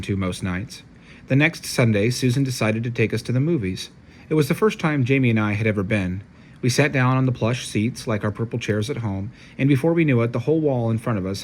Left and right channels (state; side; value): identical; both; correlation 1.00